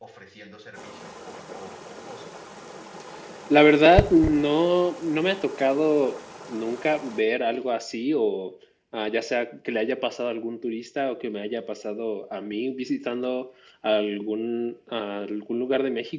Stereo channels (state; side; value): identical; both; correlation 1.00